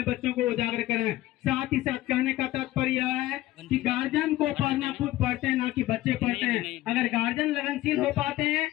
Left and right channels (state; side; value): quieter; right; 16.0 dB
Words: बच्चों को उजागर करें। साथ ही साथ कहने का तात्पर्य यह है कि गार्जियन को पढ़ना खुद पढ़ते हैं, ना कि बच्चे पढ़ते हैं। अगर गार्जियन लगनशील हो पाते हैं